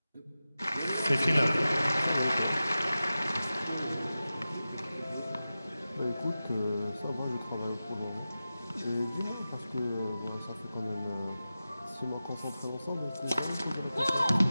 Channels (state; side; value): inverted; both; correlation -0.94